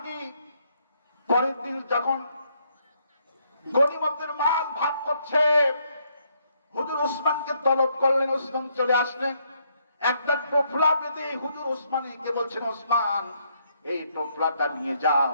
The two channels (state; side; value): inverted; both; correlation -0.73